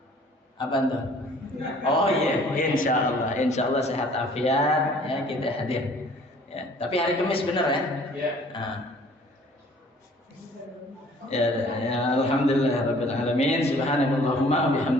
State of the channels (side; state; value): both; normal; correlation 0.54